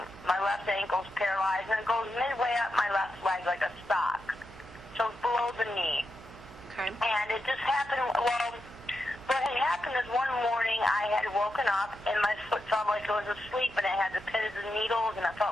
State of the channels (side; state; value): right; noise; hum, 18 dB below the sound